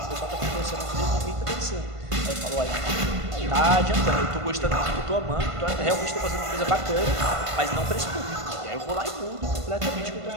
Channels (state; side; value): late; left; 1.5 ms